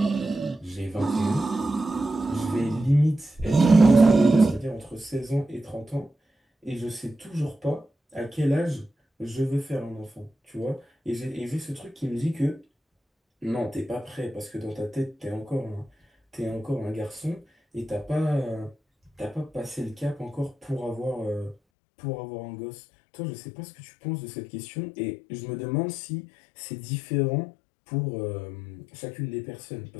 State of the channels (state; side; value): drops out; right; at 21.6 s